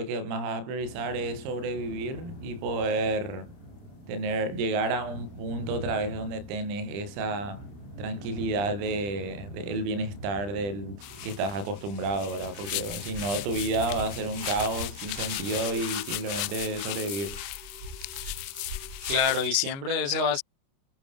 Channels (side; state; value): left; late; 29 ms